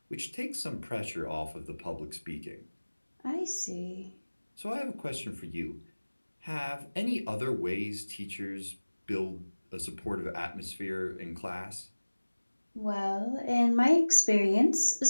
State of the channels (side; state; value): both; inverted; correlation -1.00